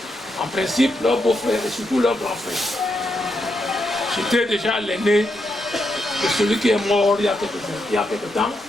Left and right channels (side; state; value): both; normal; correlation 0.82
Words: en principe, leur beau-frère et surtout leur grand frère. J'étais déjà l'aîné de celui qui est mort il y a quelques temps,